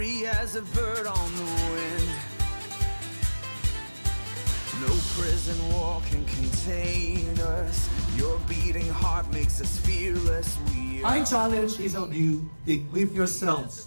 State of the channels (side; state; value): both; inverted; correlation -1.00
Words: as a bird on the wind. No prison wall can contain us. Your beating heart makes us fearless. My challenge is on you to equip